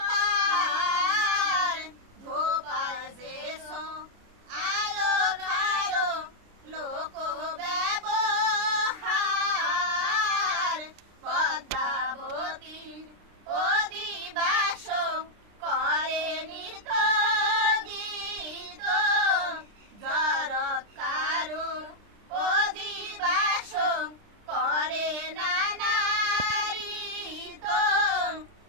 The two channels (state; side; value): late; left; 29 ms